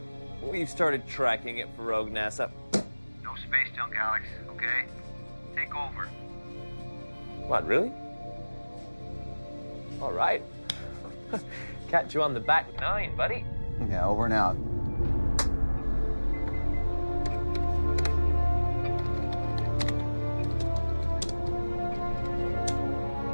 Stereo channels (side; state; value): both; inverted; correlation -1.00